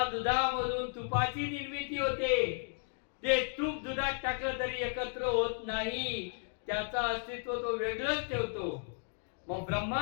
दुधामधून तुपाची निर्मिती होते ते तूप दुधात टाकलं तरी एकत्र होत नाही, त्याचं अस्तित्व तो वेगळंच ठेवतो. मग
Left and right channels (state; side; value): silent; right; 55 dB below the other